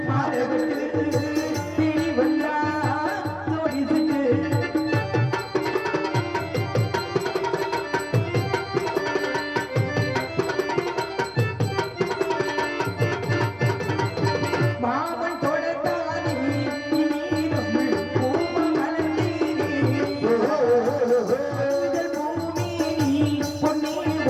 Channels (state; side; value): identical; both; correlation 1.00